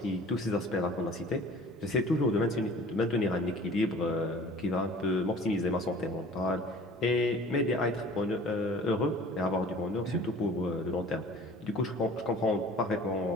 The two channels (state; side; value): normal; both; correlation 0.47